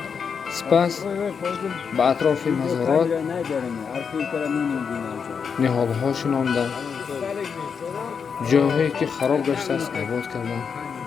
сипас ба атрофи мазорот ниҳолҳо шинонданд, ҷойҳое ки хароб гаштааст обод карданд.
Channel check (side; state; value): right; quieter; 6.3 dB